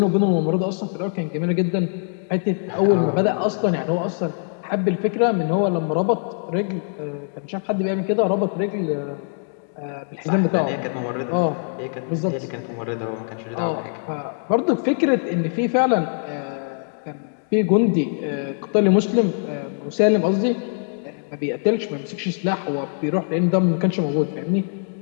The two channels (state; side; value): silent; right; 63 dB below the other